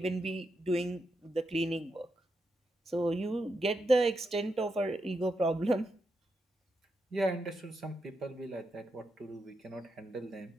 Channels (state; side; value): normal; both; correlation 0.84